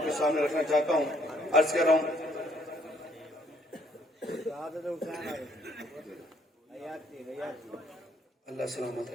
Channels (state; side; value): normal; both; correlation 0.65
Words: کے سامنے رکھنا چاہتا ہوں. عرض کر رہا ہوں اللہ سلامت